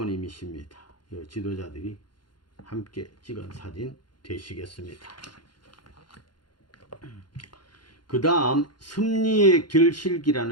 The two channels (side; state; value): right; late; 0.71 ms